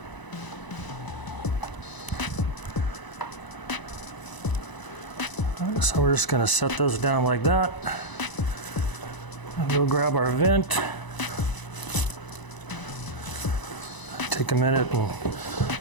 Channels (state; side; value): late; right; 1.0 ms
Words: So we're just going to set those down like that. And we'll grab our vent. Take a minute and